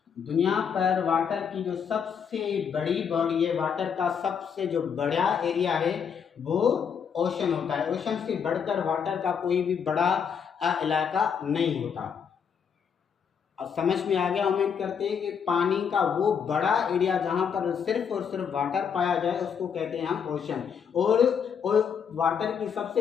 दुनिया पर वाटर की जो सबसे बड़ी बॉडी है, वाटर का सबसे जो बड़ा एरिया है वो ओशन होता है। ओशन से बढ़कर वाटर का कोई भी बड़ा इलाका नहीं होता। अब समझ में आ गया, उम्मीद करते हैं कि पानी का वो बड़ा एरिया जहाँ पर सिर्फ और सिर्फ वाटर पाया जाए उसको कहते हैं हम ओशन। और वाटर की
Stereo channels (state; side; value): quieter; right; 7.1 dB